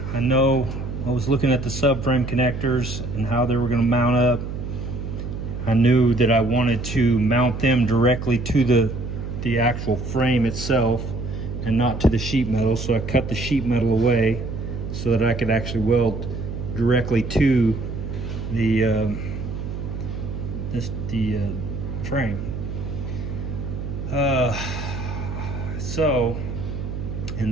I know I was looking at the subframe connectors and how they were gonna mount up. I knew that I wanted to mount them directly to the actual frame itself and not to the sheet metal. So I cut the sheet metal away so that I could actually weld directly to the frame.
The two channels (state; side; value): noise; right; hum, 6 dB below the sound